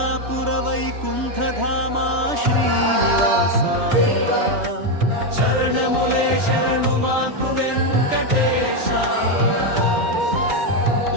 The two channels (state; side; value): late; left; 3.2 ms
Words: वैकुण्ठधाम श्रीनिवास चरणमुले शरणुमाकु वेङ्कटेश